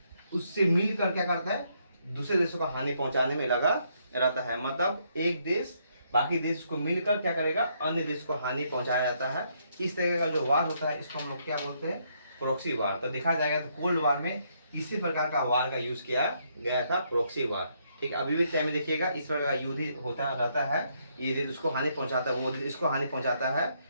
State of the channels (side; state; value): both; inverted; correlation -0.73